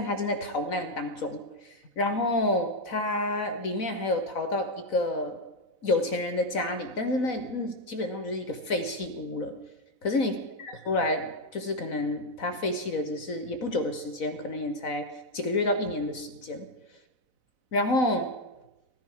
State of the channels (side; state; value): right; late; 4.0 ms